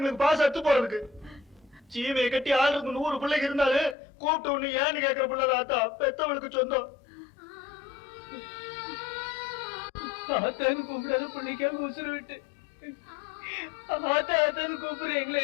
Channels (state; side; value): drops out; right; at 4.0 s